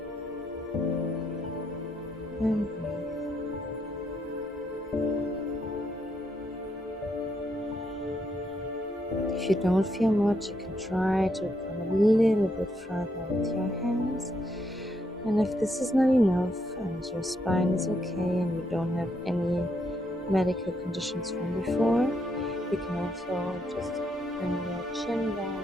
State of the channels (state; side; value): normal; both; correlation 0.76